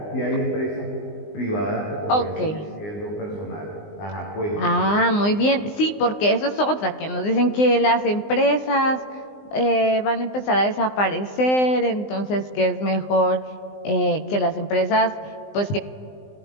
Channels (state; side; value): late; right; 20 ms